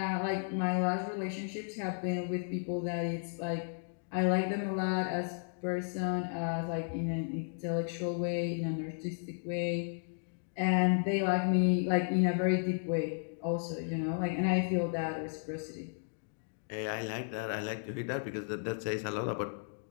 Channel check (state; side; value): silent; right; digital silence